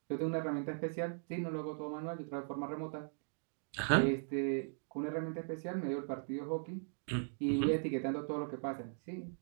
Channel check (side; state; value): left; silent; digital silence